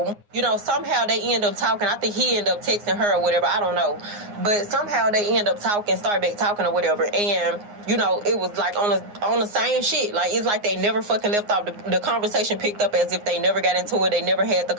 you know, somehow they end up talking. I think he ended up texting her or whatever, I don't know. But somehow they end up talking, start back talking or whatever, and, you know, it was like on the same shit. Like, it's like they never fucking left off. The conversation picked up as if they never got into it. They never had the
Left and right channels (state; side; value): late; left; 9.6 ms